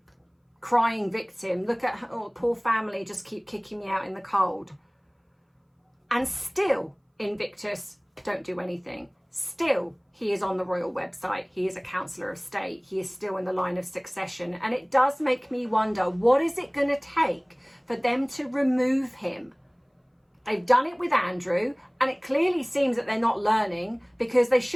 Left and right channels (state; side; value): identical; both; correlation 1.00